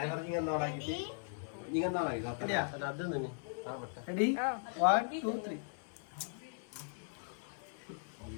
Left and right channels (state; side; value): silent; right; 52 dB below the other